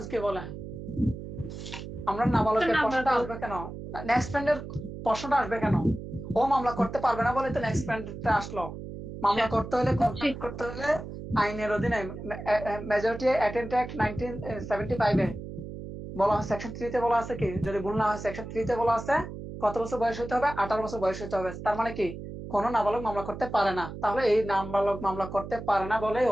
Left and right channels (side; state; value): right; noise; hum, 10 dB below the sound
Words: কি বলে। আমরা নাবালকের প্রশ্নটা আসবে কেন, নেক্সট ফ্রেন্ডের প্রশ্নটা আসবে কেন, ও মামলা করতে পারবে না বলে তো নেক্সট ফ্রেন্ডটা আসলো। মামলা করতে হলে, কন্ট্যাক্ট করতে হলে আইনের অধীনে মেজরিটি অ্যাটেন্ট অ্যাক্ট 1975 এ বলা হয়, সেকশন 3 তে বলা আছে কি, যদি ভুল না হয় সেকশন 3 তে বলা আছে কত বছর বয়স হতে হবে, 18 বছর বয়স হতে হবে। তার মানে কি, কোনো নাবালক মামলা করতে পারে না। তাহলে এই নাবালক মামলা করতে পারে না বলে